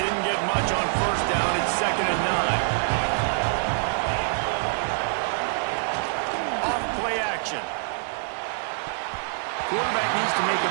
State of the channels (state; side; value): silent; left; digital silence